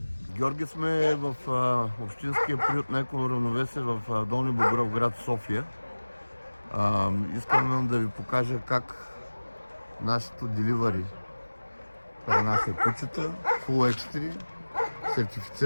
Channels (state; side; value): inverted; both; correlation -1.00